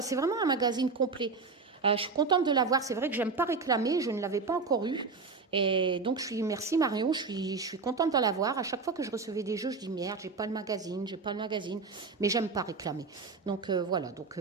c'est vraiment un magazine complet. Je suis contente de l'avoir, c'est vrai que j'aime pas réclamer, je ne l'avais pas encore eu. Et donc, merci Marion, je suis contente de l'avoir. À chaque fois que je recevais des jeux, je dis merde, j'ai pas le magazine, mais j'aime pas réclamer. Donc voilà, donc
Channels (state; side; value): quieter; left; 4.5 dB